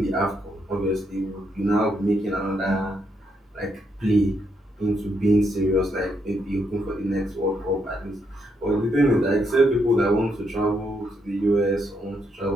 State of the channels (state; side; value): normal; both; correlation 0.78